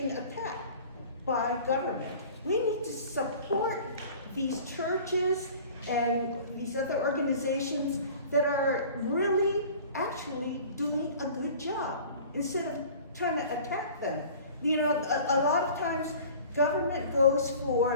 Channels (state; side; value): inverted; both; correlation -0.45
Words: attacked by government. We need to support these churches and these other organizations that are really actually doing a good job instead of trying to attack them. You know, a lot of times government goes